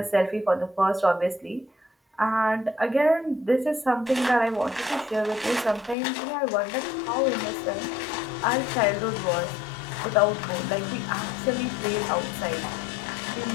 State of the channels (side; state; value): right; drops out; at 6.0 s